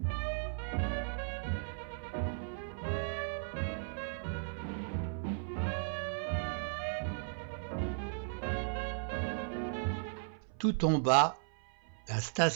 Tout en bas, la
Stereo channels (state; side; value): silent; left; 54 dB below the other